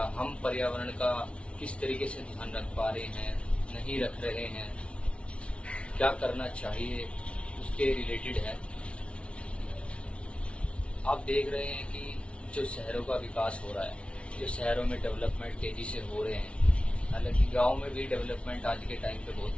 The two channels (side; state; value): right; late; 0.060 ms